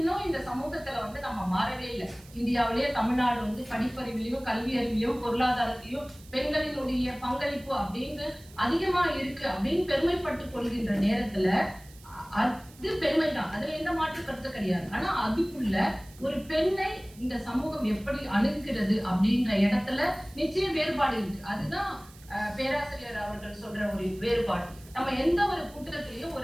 இந்த சமூகத்துல வந்து நம்ம மாறவே இல்லை. இந்தியாவிலேயே தமிழ்நாடு வந்து படிப்பறிவிலையும் கல்வி அறிவிலையும் பொருளாதாரத்திலையும் பெண்களினுடைய பங்களிப்பு அப்படின்னு அதிகமா இருக்கு அப்படின்னு பெருமைப்பட்டு கொள்கின்ற நேரத்துல அது பெருமைதான், அதுல எந்த மாற்று கருத்து கிடையாது. ஆனா அதுக்குள்ள ஒரு பெண்ணை இந்த சமூகம் எப்படி அணுகிறது அப்படின்ற இடத்துல நிச்சய வேறுபாடு இருக்கு. அதுதான் பேராசிரியர் அவர்கள் சொல்ற ஒரு வேறுபாடு. நம்ம எந்த ஒரு கூட்டத்திலையும்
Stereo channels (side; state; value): right; noise; hiss, 23 dB below the sound